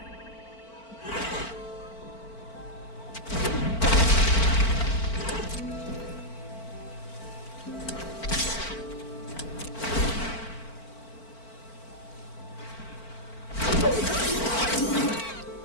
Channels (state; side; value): late; right; 4.5 ms